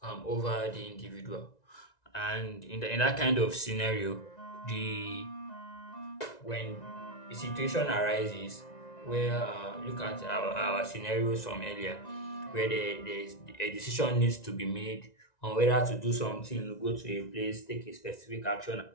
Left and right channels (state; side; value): late; right; 1.9 ms